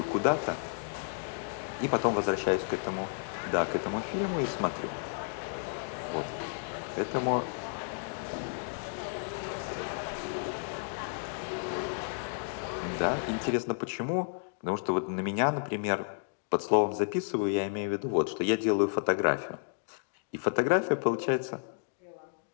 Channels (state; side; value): silent; right; digital silence